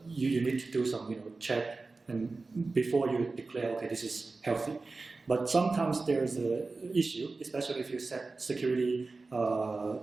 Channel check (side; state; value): left; quieter; 3.7 dB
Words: you need to do some check and before you declare, okay, this is healthy. But sometimes there's an issue, especially if you set security